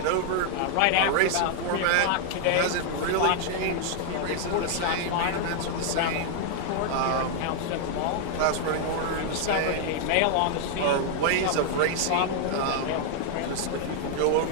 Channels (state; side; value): different; both; correlation 0.00